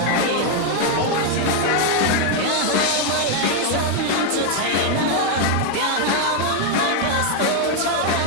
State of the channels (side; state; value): both; different; correlation 0.01